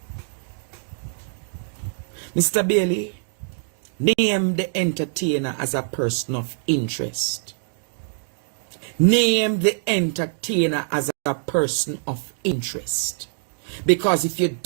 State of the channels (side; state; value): left; silent; digital silence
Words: Mr. Bailey, name the entertainer as a person of interest. Name the entertainer as a person of interest. Because if you